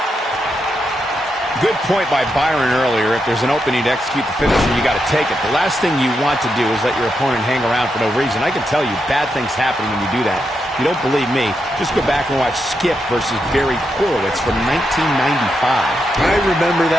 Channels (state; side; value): normal; both; correlation 0.84